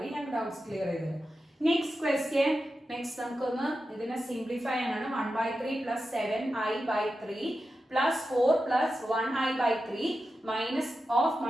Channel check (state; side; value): normal; both; correlation 0.91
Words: ഞാൻ ഡൗട്ട്സ് ക്ലിയർ ചെയ്തത്. Next question. നെക്സ്റ്റ് നമുക്കൊന്ന് ഇതിനെ സിംപ്ലിഫൈ ആണ്. 1/3 plus 7i/3 plus 4 plus 1i/3 minus of